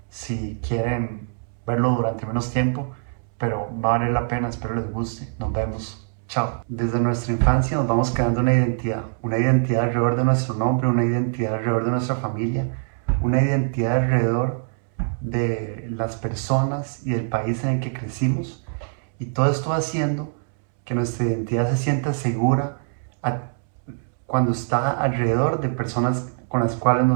si quieren verlo durante menos tiempo, pero va a valer la pena. Espero les guste. Nos vemos. Chao. Desde nuestra infancia nos vamos creando una identidad alrededor de nuestro nombre, una identidad alrededor de nuestra familia, una identidad alrededor de las personas y del país en el que crecimos. Y todo esto va haciendo que nuestra identidad se sienta segura cuando está alrededor de personas con las cuales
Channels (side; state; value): left; silent; 63 dB below the other